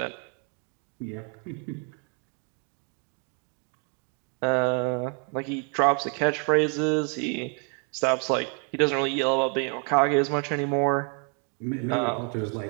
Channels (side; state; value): left; quieter; 39.1 dB